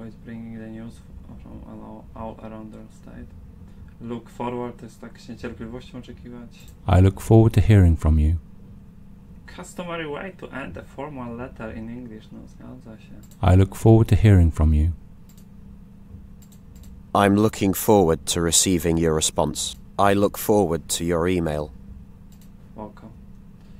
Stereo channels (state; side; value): identical; both; correlation 1.00